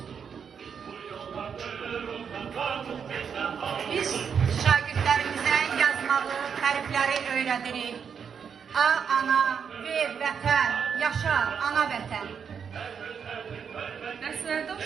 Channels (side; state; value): left; quieter; 6.9 dB